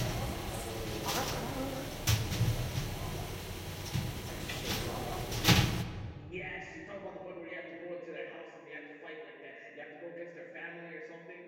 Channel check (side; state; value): both; identical; correlation 1.00